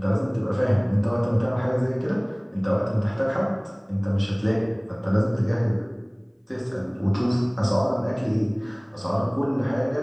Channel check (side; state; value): both; identical; correlation 1.00